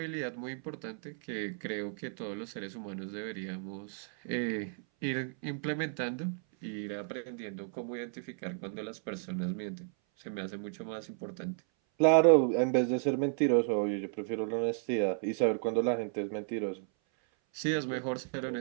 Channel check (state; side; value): silent; left; 56 dB below the other